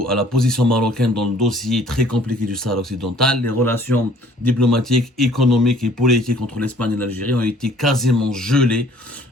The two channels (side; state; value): both; normal; correlation 0.56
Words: à la position marocaine dans le dossier très compliqué du Sahara occidental. Les relations diplomatiques, économiques et politiques entre l'Espagne et l'Algérie ont été quasiment gelées,